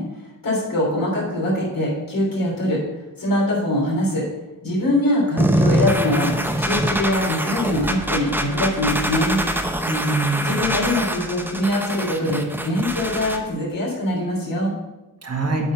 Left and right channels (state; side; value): normal; both; correlation 0.40